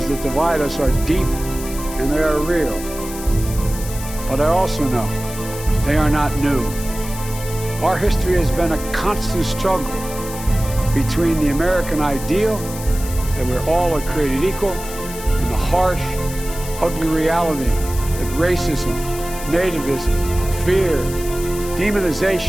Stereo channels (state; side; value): noise; left; hiss, 12 dB below the sound